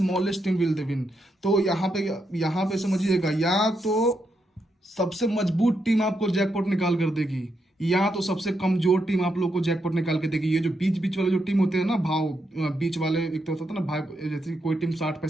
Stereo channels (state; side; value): normal; both; correlation 0.81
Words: team will the win. तो यहाँ पे समझिएगा, या तो सबसे मजबूत टीम आपको जैकपॉट निकाल कर देगी, या तो सबसे कमजोर टीम आप लोग को जैकपॉट निकाल के देगी। ये जो बीच बीच वाले जो टीम होते हैं ना, बीच वाले, एक तो होता है ना भाई, जैसे कोई टीम 60